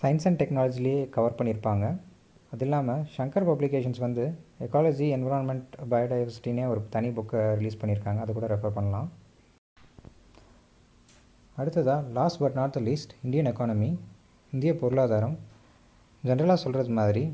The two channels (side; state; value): both; identical; correlation 1.00